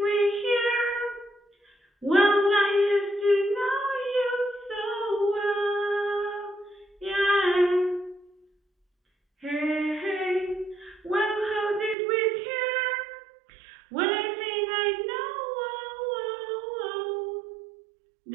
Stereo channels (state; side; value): drops out; left; at 12.0 s